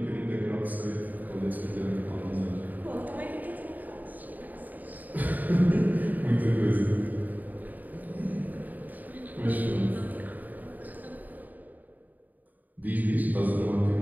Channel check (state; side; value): late; left; 0.083 ms